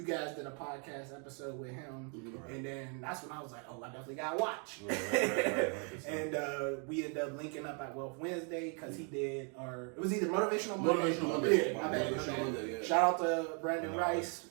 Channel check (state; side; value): quieter; left; 38.4 dB